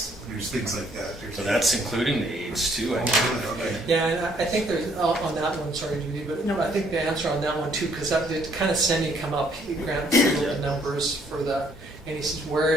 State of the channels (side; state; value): both; normal; correlation 0.65